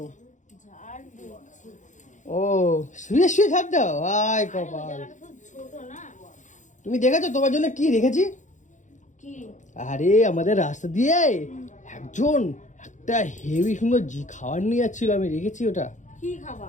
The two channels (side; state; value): right; late; 0.36 ms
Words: ও শুয়ে ঝাড় দাও? আয় কপাল, তুমি দেখেছো তোমার জন্য কি রেখেছি? আরে আমাদের রাস্তা দিয়ে একজন একটা হেভি সুন্দর খাবার নিয়ে যাচ্ছিল, আমি রেখেছি ওটা। কি